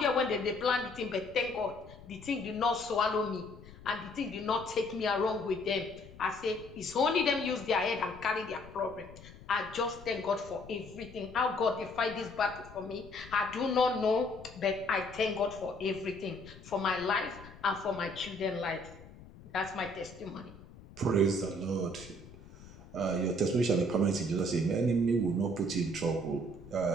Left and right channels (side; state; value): left; noise; rumble, 18 dB below the sound